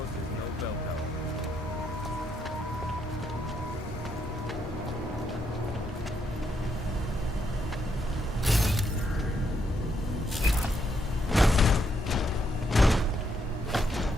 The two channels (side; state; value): both; normal; correlation 0.76